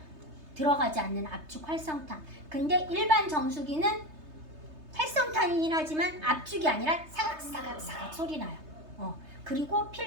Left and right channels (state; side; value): late; left; 3.3 ms